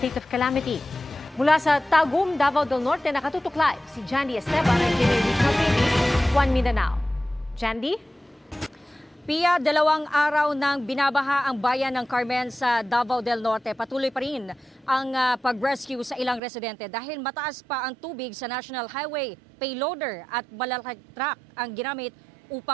of calamity. Mula sa Tagum, Davao del Norte, nakatutok live si Jandy Esteban ng GMA Regional TV, One Mindanao. Jandy? Pia, 2 araw nang binabaha ang bayan ng Carmen sa Davao del Norte. Patuloy pa rin ang pag-rescue sa ilang residente dahil mataas pa ang tubig sa National Highway. Payloader at malalaking truck ang ginamit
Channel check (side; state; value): left; drops out; at 16.4 s